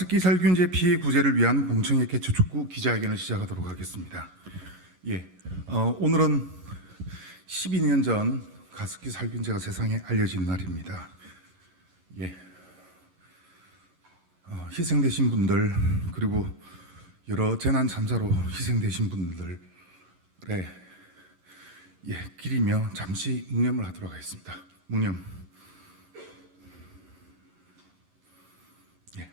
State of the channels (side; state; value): left; late; 10 ms